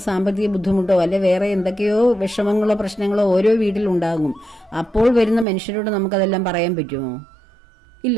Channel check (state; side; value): drops out; left; at 5.5 s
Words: സാമ്പത്തിക ബുദ്ധിമുട്ടോ അല്ലെ വേറെ എന്തൊക്കെയോ വിഷമങ്ങളോ പ്രശ്നങ്ങളോ ഓരോ വീട്ടിലുണ്ടാകും. അപ്പോൾ വരുന്ന മനുഷ്യരോട് നമുക്കതെല്ലാം പറയാൻ പറ്റുമോ?